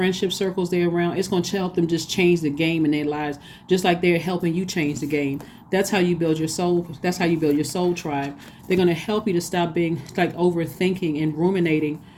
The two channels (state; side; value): identical; both; correlation 1.00